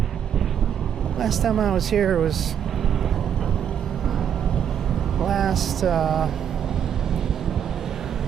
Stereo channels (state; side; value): quieter; left; 8.8 dB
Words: Last time I was here was last,